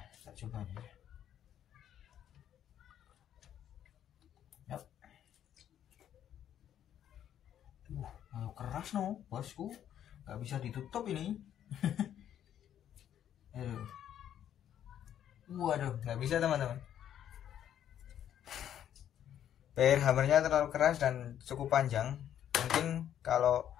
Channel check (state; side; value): quieter; right; 10.3 dB